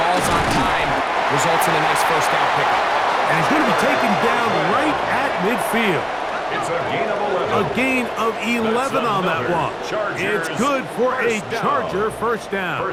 ball's on time, results in a nice first down pickup. And he's going to be taken down right at midfield. It's a gain of 11. A gain of 11 on that one. It's good for a Charger first down.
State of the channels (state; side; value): identical; both; correlation 1.00